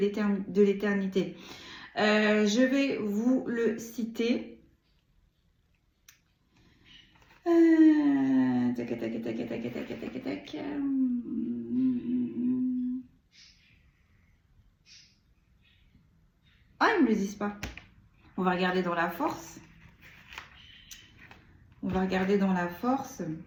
Je vais vous le citer. Tac, tac, tac, tac, tac, tac, tac, tac. Ah, ils ne me le disent pas. On va regarder dans la force. On va regarder dans la force.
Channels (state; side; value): identical; both; correlation 1.00